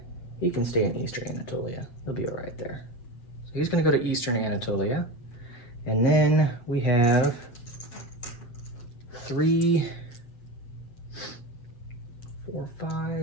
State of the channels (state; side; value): late; right; 8.1 ms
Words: he can stay in eastern Anatolia. He'll be all right there. So he's going to go to eastern Anatolia. And then we have 3, 4, 5.